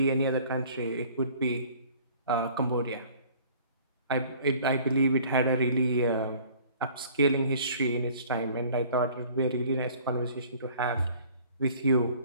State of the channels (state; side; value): inverted; both; correlation -0.52